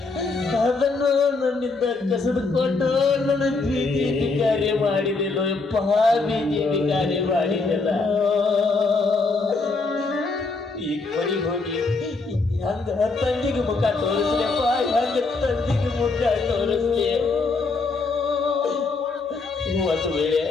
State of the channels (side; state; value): right; quieter; 3.9 dB